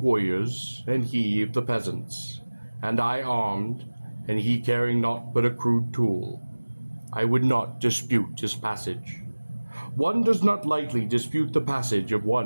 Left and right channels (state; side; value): inverted; both; correlation -1.00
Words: warriors, and he of the peasants, and I armed, and he carrying naught but a crude tool. I would not dispute his passage. One does not lightly dispute the passage of